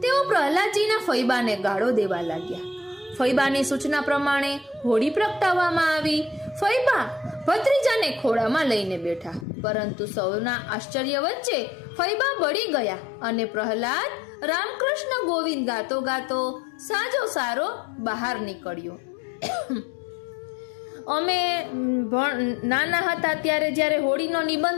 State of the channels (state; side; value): drops out; right; at 9.5 s